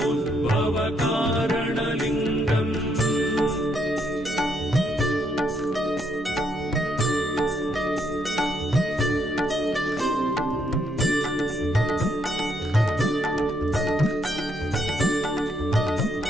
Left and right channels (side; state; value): both; normal; correlation 0.74